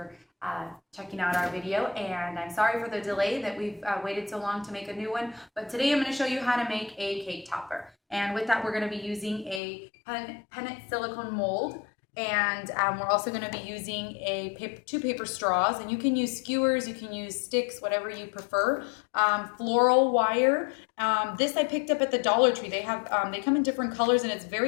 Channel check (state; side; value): drops out; right; at 9.6 s